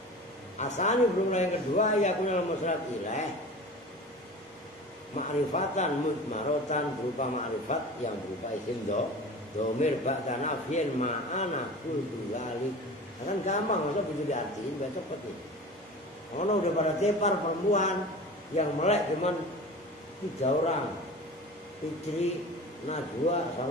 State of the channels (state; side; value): normal; both; correlation 0.36